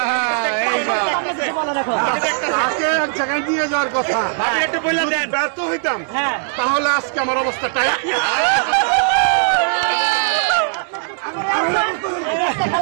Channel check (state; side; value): silent; left; digital silence